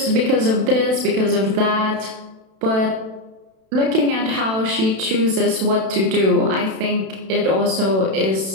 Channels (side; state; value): left; late; 32 ms